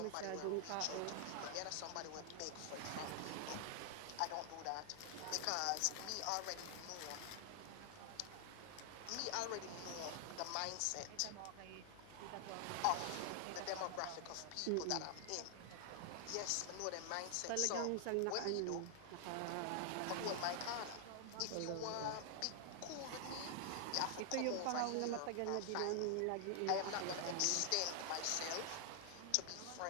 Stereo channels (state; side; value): different; both; correlation 0.00